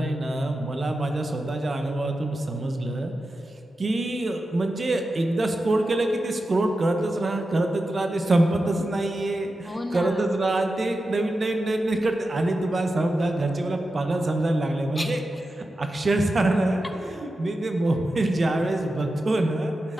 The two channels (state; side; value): normal; both; correlation 0.91